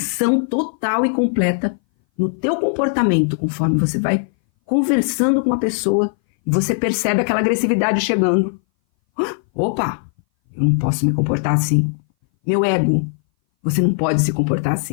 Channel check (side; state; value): right; silent; 60 dB below the other